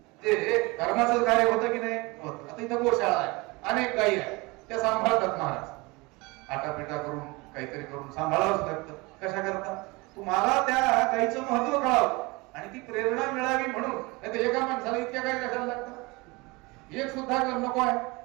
ते धर्माचं कार्य होतं की नाही होत. आता इथं गोशाळा आहे, अनेक गायी आहे, त्या सांभाळतात महाराज. आटापिटा करून काहीतरी करून सांभाळावंच लागतं. कशा करता? तुम्हाला त्या गायीचं महत्व कळावं आणि ती प्रेरणा मिळावी म्हणून. नाही तर एका माणसाला इतक्या गायी कशाला लागतात? एक सुद्धा नको आहे.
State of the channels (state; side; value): quieter; left; 24.8 dB